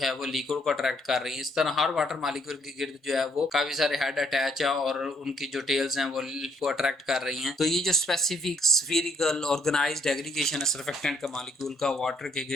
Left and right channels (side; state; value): both; normal; correlation 0.68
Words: वो लिक्विड को अट्रैक्ट कर रही है। इस तरह हर वाटर मॉलिक्यूल के गिर्द जो है वो काफी सारे हेड अटैच है और उनकी जो टेल्स हैं वो अट्रैक्ट कर रही हैं। तो ये जो स्पेसिफिक स्फीरिकल ऑर्गेनाइज्ड एग्रीगेशन है सर्फेक्टेंट का मॉलिक्यूल का वाटर के